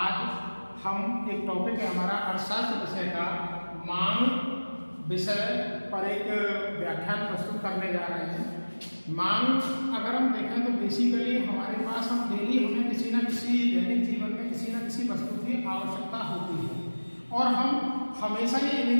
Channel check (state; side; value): inverted; both; correlation -1.00